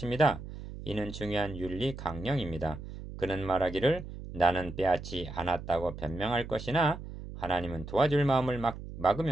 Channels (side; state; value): right; noise; hum, 11 dB below the sound